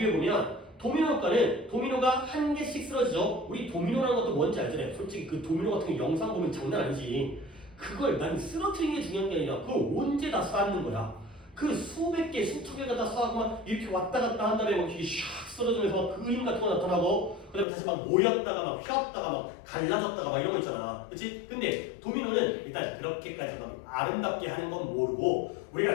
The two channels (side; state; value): right; drops out; at 17.7 s